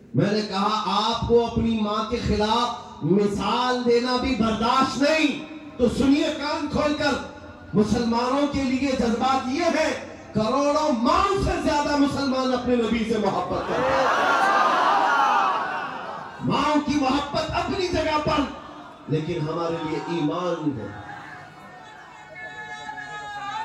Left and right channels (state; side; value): identical; both; correlation 1.00